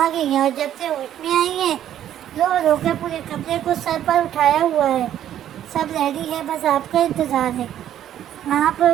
گئی ہیں اور جب سے ہوش میں آئی ہیں رو رو کر پورے کمرے کو سر پر اٹھایا ہوا ہے. سب ریڈی ہے، بس آپ کا انتظار ہے. آپ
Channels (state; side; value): quieter; left; 11.1 dB